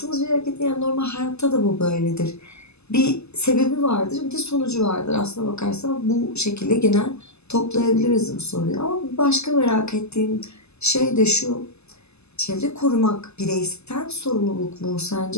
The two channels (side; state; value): right; late; 0.80 ms